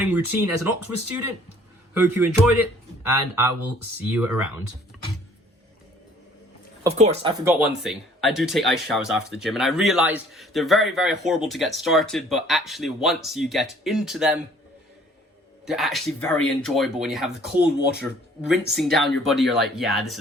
routine as an Oxford student. Hope you enjoyed it, and I will see you around. Of course, I forgot one thing. I do take ice showers after the gym, and I realized they're very, very horrible to get started, but actually once you get into them, they're actually very enjoyable. When you have the cold water rinsing down your body, you're like, yeah, this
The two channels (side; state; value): both; normal; correlation 0.56